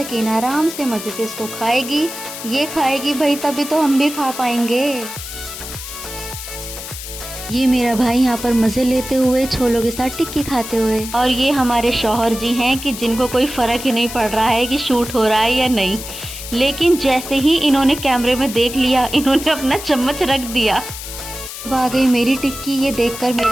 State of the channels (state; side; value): noise; left; hiss, 10 dB below the sound